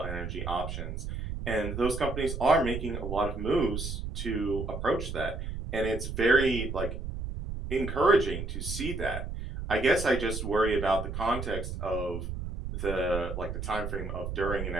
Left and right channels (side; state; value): right; noise; rumble, 5 dB below the sound